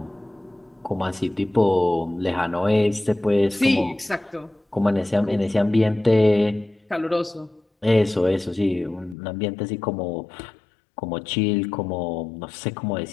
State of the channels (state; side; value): drops out; right; at 9.2 s